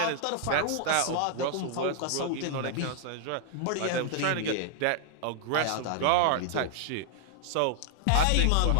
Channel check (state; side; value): different; both; correlation -0.01